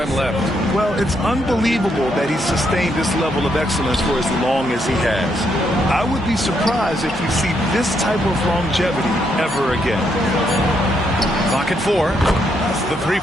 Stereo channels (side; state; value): both; normal; correlation 0.76